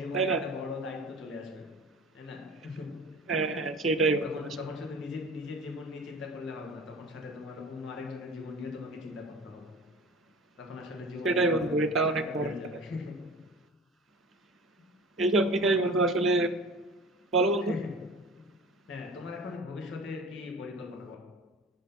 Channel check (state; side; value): normal; both; correlation 0.39